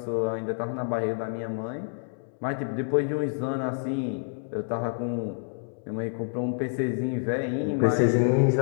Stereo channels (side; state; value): right; silent; 59 dB below the other